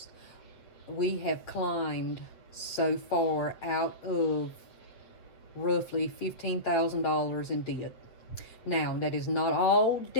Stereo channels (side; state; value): right; late; 8.3 ms